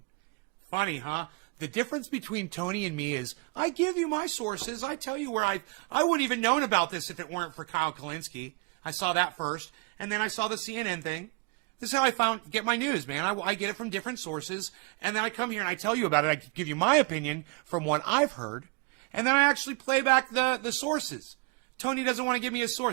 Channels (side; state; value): left; quieter; 30.2 dB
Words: Funny, huh? The difference between Tony and me is I give you my sources. I tell you where I wouldn't even known about this if it weren't for Kyle Kalinske. I saw that first, and then I saw the CNN thing. This is how I get my news, man. I get it from different sources, and then I come here and I tell you about it. I give you my opinion from what I've heard, and then I actually play back the sources. Tony doesn't want to give me a